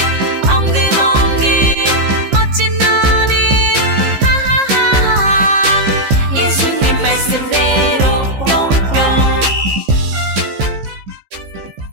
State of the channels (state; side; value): late; left; 15 ms